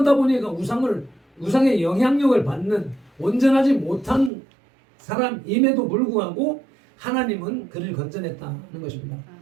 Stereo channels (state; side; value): drops out; left; at 4.3 s